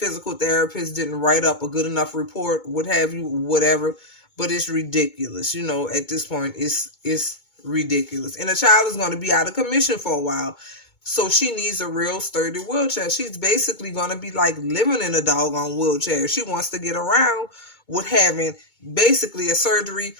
therapist didn't write up a good enough report, what have you, whatever. But it's ridiculous. At this point, it's ridiculous. And the child is going to be out of commission for a while. So she needs a real sturdy wheelchair. She's basically going to be like living in a doggone wheelchair. She wants to get around with having basically a surgery.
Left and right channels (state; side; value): late; right; 2.2 ms